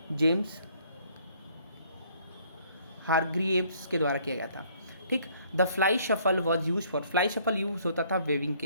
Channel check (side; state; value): both; inverted; correlation -0.62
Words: जेम्स हारग्रीव्स के द्वारा किया गया था, ठीक. The fly shuffle was use for, fly shuffle use होता था वेविंग